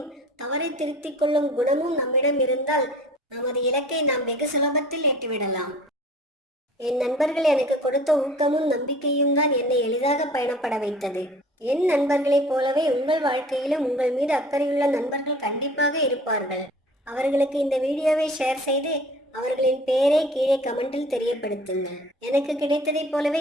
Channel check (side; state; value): both; normal; correlation 0.46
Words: தவறை திருத்திக் கொள்ளும் குணமும் நம்மிடம் இருந்தால் நமது இலக்கை நாம் வெகு சுலபத்தில் எட்டிவிடலாம். என் நண்பர்கள் எனக்கு கொடுத்த ஊக்கமும் நம்பிக்கையும் தான் என்னை எளிதாக பயணப்பட வைத்தது. என் நண்பர்களைப் போலவே உங்கள் வாழ்க்கையிலும் உங்கள் மீது அக்கறையுள்ள நண்பர்கள் கண்டிப்பாக இருப்பார்கள். அவர்களுக்கு இந்த வீடியோவை ஷேர் செய்து அவர்களின் பெயரை கீழே கமெண்டில் தெரியப்படுத்துங்கள். எனக்கு கிடைத்ததைப்